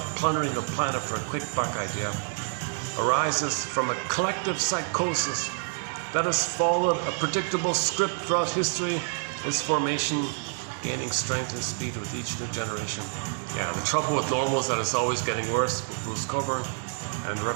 plundering the planet for a quick buck idea arises from a collective psychosis that has followed a predictable script throughout history, its formation gaining strength and speed with each new generation. Yeah, the trouble with normal is that it's always getting worse with Bruce Coburn, and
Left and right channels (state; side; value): silent; left; 56 dB below the other